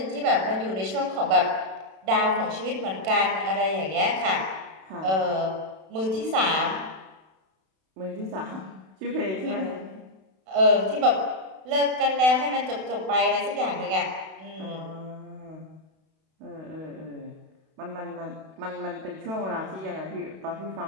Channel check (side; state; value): left; late; 32 ms